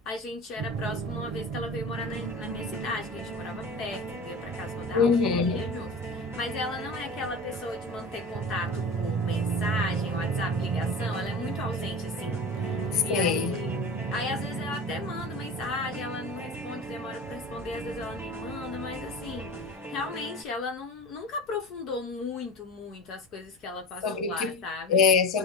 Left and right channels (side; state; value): both; normal; correlation 0.33